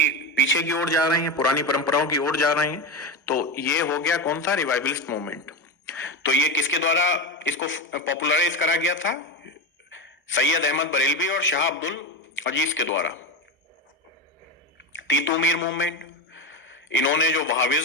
पीछे की ओर जा रहे हैं, पुरानी परंपराओं की ओर जा रहे हैं, तो ये हो गया कौन सा? Revivalist movement. तो ये किसके द्वारा इसको पॉपुलराइज करा गया था? सैयद अहमद बरेलवी और शाह अब्दुल अजीज के द्वारा। तीतू मीर मूवमेंट, इन्होंने जो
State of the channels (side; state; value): both; normal; correlation 0.18